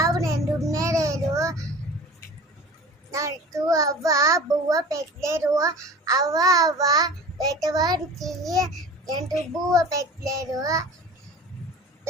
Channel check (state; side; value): normal; both; correlation 0.39